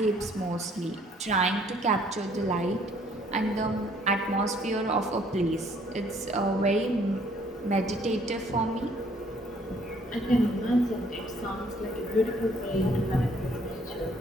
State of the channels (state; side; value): normal; both; correlation 0.62